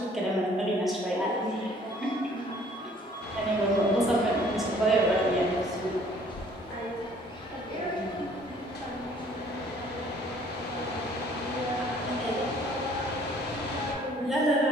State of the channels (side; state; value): both; normal; correlation 0.57